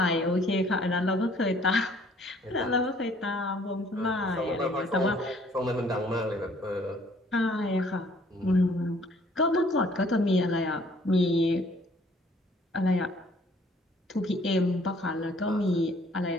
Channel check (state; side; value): normal; both; correlation 0.59